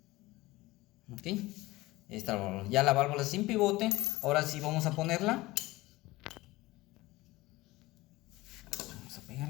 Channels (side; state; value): right; quieter; 19.6 dB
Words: Ok, ya la válvula sin pivote. Ahora sí vamos a ponerla. Vamos a